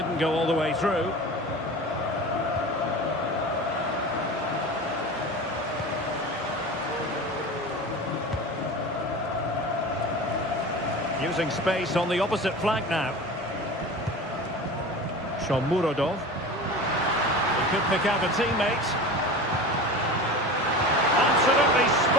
go all the way through. Using space on the opposite flank now. Shomurodov. He could pick out a teammate. Absolutely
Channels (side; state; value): both; normal; correlation 0.33